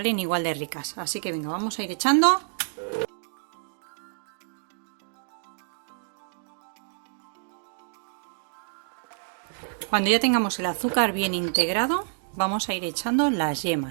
igual de ricas. Así que venga, vamos a ir echando. Cuando ya tengamos el azúcar bien integrado, vamos a ir echando las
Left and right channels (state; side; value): silent; left; digital silence